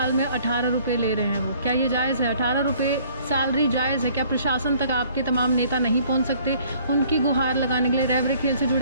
में 18 रुपये ले रहे हैं वो। क्या ये जायज़ है? 18 रुपये सैलरी जायज़ है? क्या प्रशासन तक आपके तमाम नेता नहीं पहुंच सकते? उनकी गुहार लगाने के लिए रैबरे खेल से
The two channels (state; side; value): inverted; both; correlation -0.57